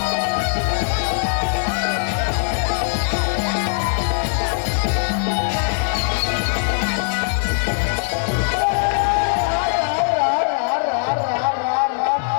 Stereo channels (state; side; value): silent; right; digital silence